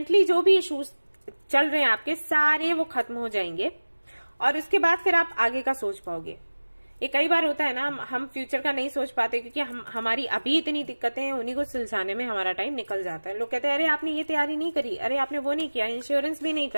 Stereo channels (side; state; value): both; inverted; correlation -1.00